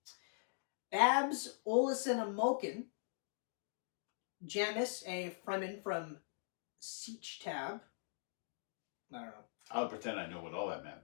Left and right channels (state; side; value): silent; right; digital silence